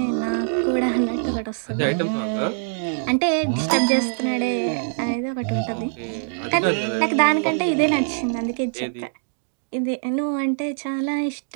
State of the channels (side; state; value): left; silent; digital silence